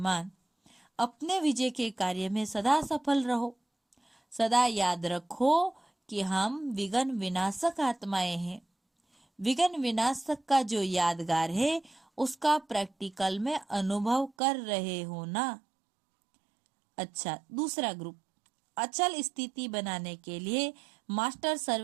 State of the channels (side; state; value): left; drops out; at 14.3 s